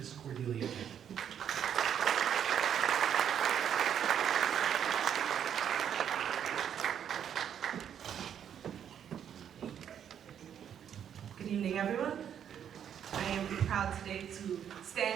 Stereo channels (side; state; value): left; quieter; 8.9 dB